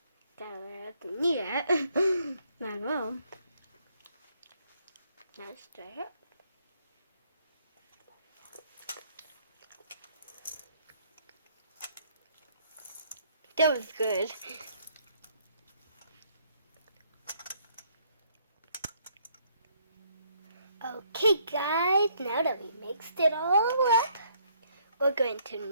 Gotta need it. Might as well. Now stir it. That was good. Okay guys, now that we mixed it all up, we're going to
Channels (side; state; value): both; inverted; correlation -0.67